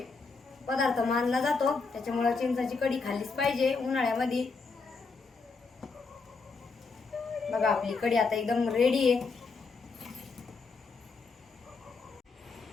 पदार्थ मानला जातो. त्याच्यामुळे चिंचेची कढी खाल्लीच पाहिजे उन्हाळ्यामध्ये. बघा आपली कढी आता एकदम रेडी आहे.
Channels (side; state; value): right; quieter; 4.4 dB